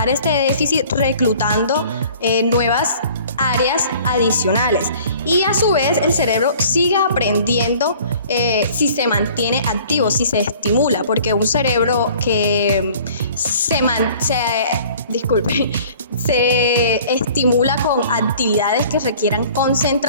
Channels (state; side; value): inverted; both; correlation -0.50